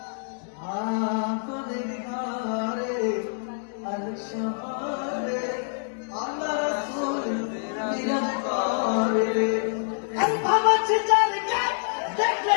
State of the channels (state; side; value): silent; right; digital silence